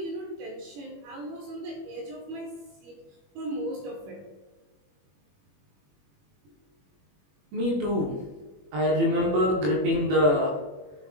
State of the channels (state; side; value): late; left; 21 ms